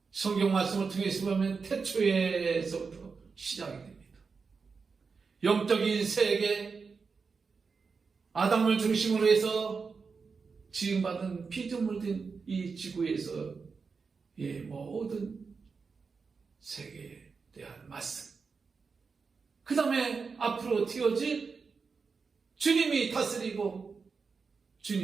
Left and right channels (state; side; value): quieter; left; 5.0 dB